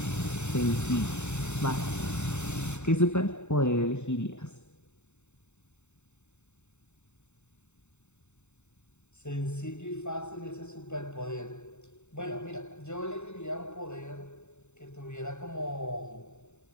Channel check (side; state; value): right; late; 0.83 ms